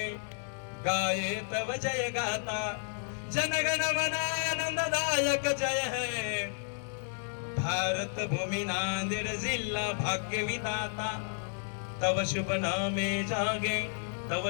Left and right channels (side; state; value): right; silent; digital silence